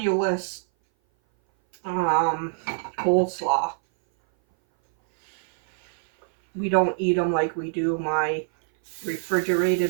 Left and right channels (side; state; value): left; silent; 58 dB below the other